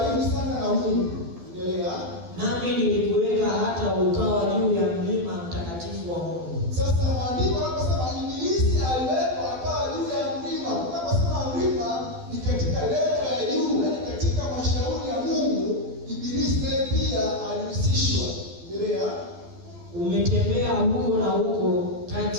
sana na Mungu. Mungu. Endelea. Nami nilikuweka hata ukawa juu ya mlima mtakatifu wa Mungu. Sasa maandiko yanaposema ibilisi aliwekwa akawa juu ya mlima. Unaposema mlima ni katika level ya juu, yaani katika mashauri ya Mungu, ibilisi naye pia alihusishwa. Endelea. Umetembea huko na huko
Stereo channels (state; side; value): late; left; 12 ms